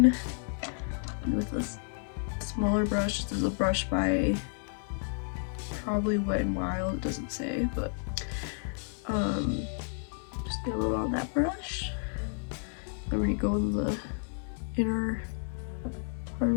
And with this smaller brush, this is a brush by probably Wet n Wild, it doesn't say, but just get a little on that brush. I'm gonna go in the inner part of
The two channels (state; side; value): silent; right; 57 dB below the other